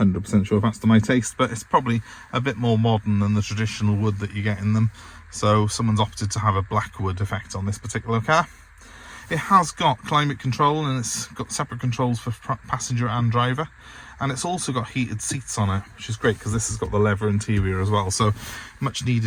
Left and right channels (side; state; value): both; identical; correlation 1.00